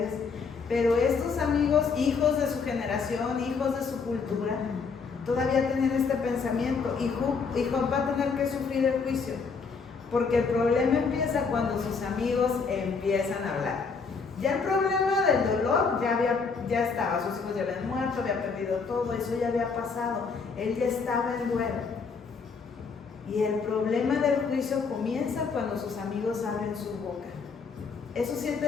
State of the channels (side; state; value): right; quieter; 5.1 dB